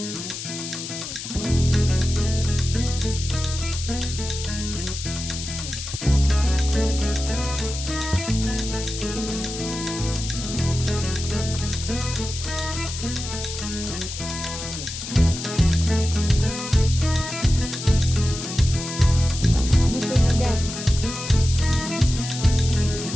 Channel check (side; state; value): left; noise; hiss, 8 dB below the sound